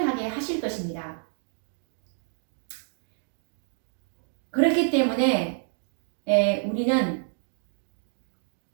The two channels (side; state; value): left; silent; digital silence